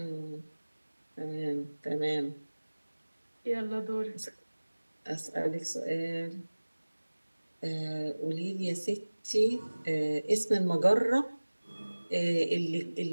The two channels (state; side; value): inverted; both; correlation -1.00